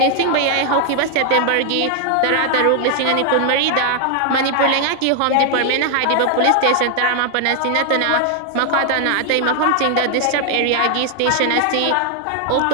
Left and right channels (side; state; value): both; different; correlation 0.00